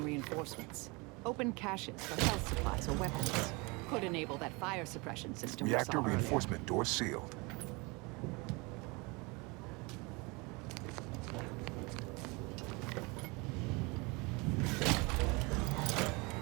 reinforcements, open caches for health supplies or weapons. Could enable that fire suppression system we Reactor saw earlier. reinforcement door sealed.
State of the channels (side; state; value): left; quieter; 27.2 dB